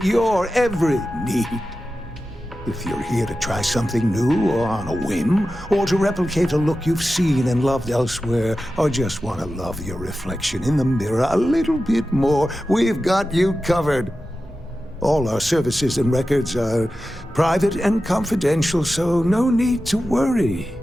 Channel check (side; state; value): both; normal; correlation 0.93